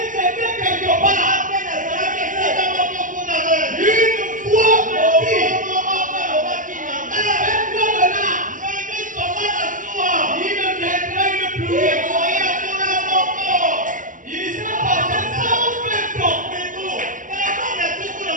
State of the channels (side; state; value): left; late; 0.38 ms